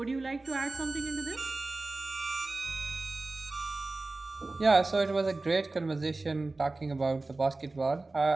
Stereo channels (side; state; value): left; quieter; 3.3 dB